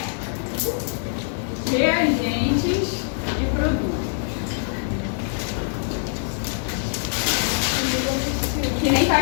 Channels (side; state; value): right; silent; 63 dB below the other